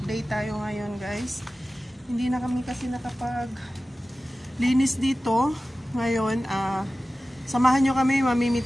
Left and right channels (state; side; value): normal; both; correlation 0.96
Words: tayo ngayon guys. Hindi na kami kasi nakapag-linis dito. Ngayon, samahan nyo kami,